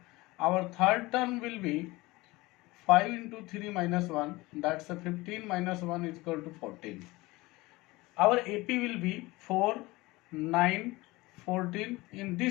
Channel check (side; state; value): right; quieter; 21.3 dB